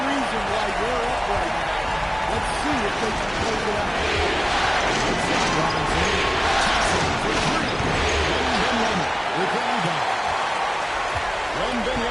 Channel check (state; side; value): identical; both; correlation 1.00